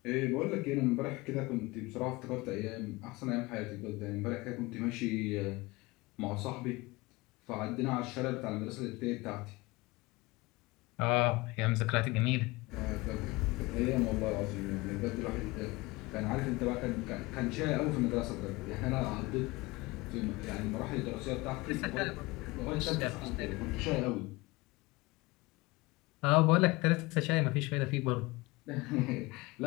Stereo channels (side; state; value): right; quieter; 22.6 dB